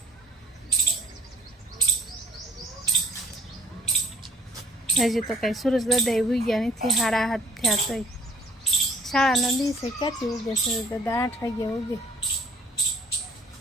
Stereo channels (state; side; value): normal; both; correlation 0.59